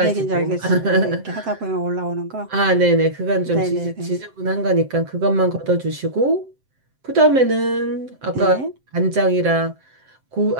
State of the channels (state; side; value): late; left; 7.7 ms